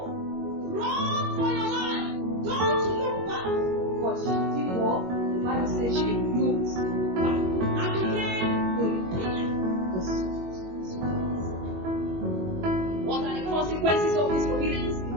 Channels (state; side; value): late; left; 21 ms